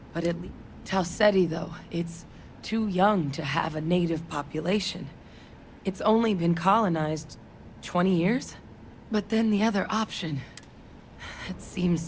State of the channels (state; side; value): identical; both; correlation 1.00